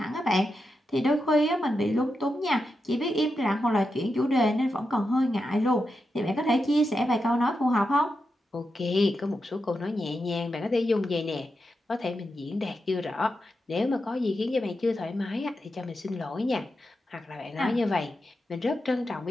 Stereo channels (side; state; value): both; normal; correlation 0.87